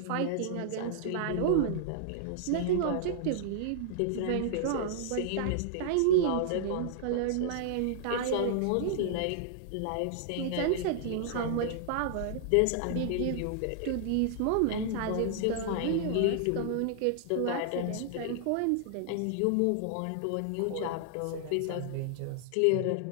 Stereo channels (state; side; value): different; both; correlation -0.01